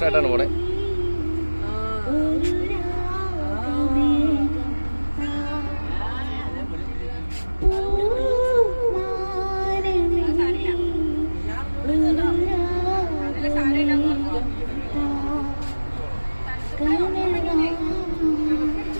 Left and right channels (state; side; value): inverted; both; correlation -1.00